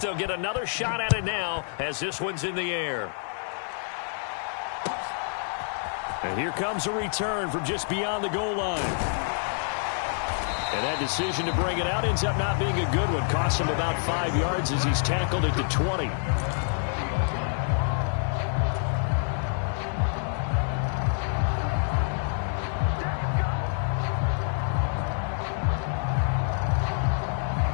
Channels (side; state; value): right; silent; digital silence